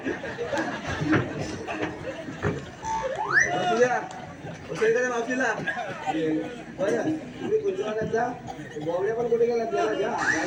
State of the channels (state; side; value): identical; both; correlation 1.00